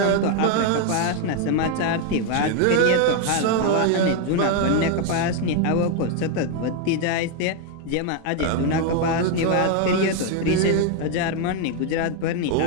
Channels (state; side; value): different; both; correlation 0.01